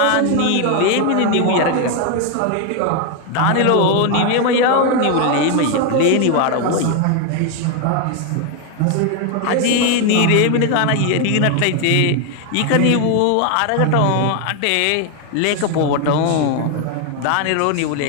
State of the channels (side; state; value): both; different; correlation 0.01